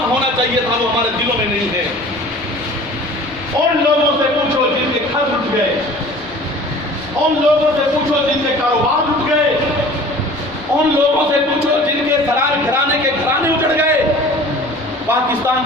ہونا چاہیے تھا وہ ہمارے دلوں میں نہیں ہے. ان لوگوں سے پوچھو جن کے گھر اٹھ گئے، ان لوگوں سے پوچھو جن کے کاروبار اٹھ گئے، ان لوگوں سے پوچھو جن کے گھرانے کے گھرانے اجڑ گئے. پاکستان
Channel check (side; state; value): both; normal; correlation 0.45